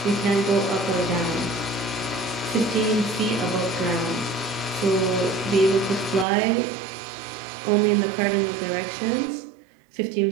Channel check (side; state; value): left; drops out; at 6.2 s